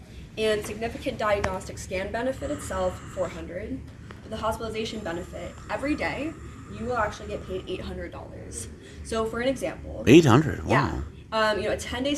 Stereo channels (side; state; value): both; identical; correlation 1.00